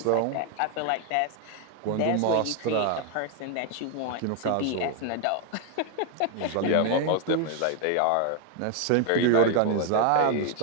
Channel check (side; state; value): both; different; correlation 0.00